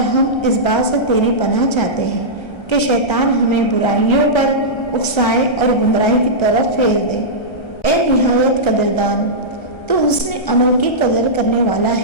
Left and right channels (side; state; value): right; late; 1.3 ms